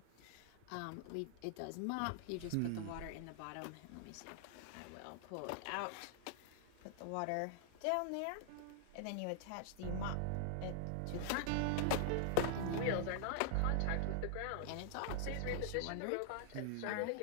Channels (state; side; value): different; both; correlation -0.01